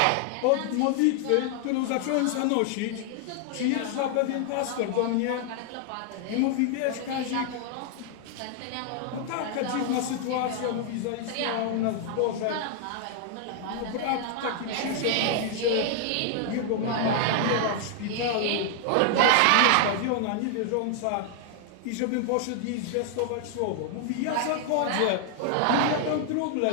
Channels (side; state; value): both; different; correlation 0.00